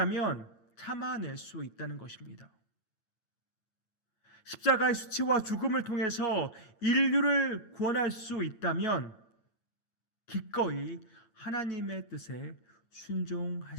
참아낼 수 있다는 것입니다. 십자가의 수치와 죽음을 통해서 인류를 구원할 수 있다면 기꺼이 하나님의 뜻에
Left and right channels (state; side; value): late; right; 9.2 ms